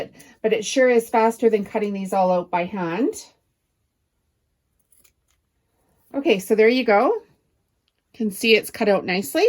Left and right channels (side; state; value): both; identical; correlation 1.00